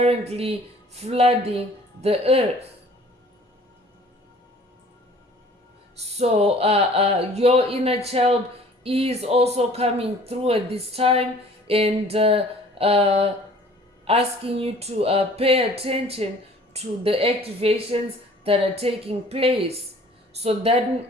flooding the earth. So your inner child is also coming through at this time. and asking you to pay attention to the activations that are taking place. So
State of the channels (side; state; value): both; normal; correlation 0.51